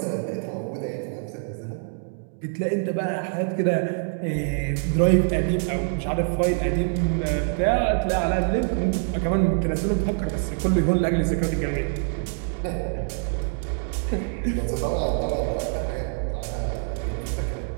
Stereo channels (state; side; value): silent; left; digital silence